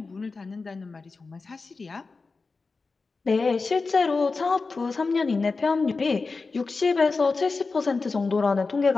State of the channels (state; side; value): quieter; right; 4.1 dB